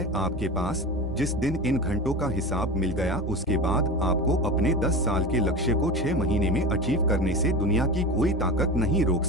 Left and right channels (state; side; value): normal; both; correlation 0.28